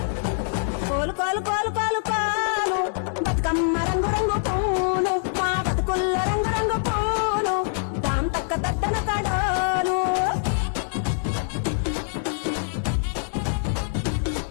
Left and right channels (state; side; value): silent; right; 62 dB below the other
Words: కోలు కోలు కోలు కోలు కోలు బతుకమ్మ రంగు రంగు పూలు మా బతుకుల్లో రంగు రంగు పూలు దాం తక్క దద్దన కడాలు